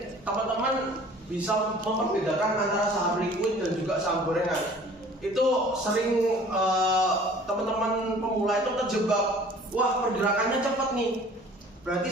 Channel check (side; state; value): both; normal; correlation 0.49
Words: teman-teman bisa membedakan antara saham liquid dan juga saham gorengan. Itu sering teman-teman pemula itu terjebak, wah pergerakannya cepat nih, berarti